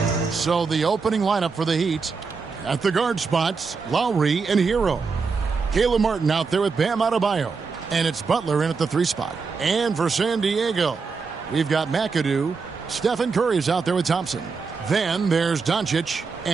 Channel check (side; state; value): left; quieter; 4.9 dB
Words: So the opening lineup for the Heat, at the guard spots, Lowry and Hero. Caleb Martin out there with Bam Adebayo. And it's Butler in at the 3 spot. And for San Diego, we've got McAdoo. Stephen Curry's out there with Thompson. Then there's Doncic.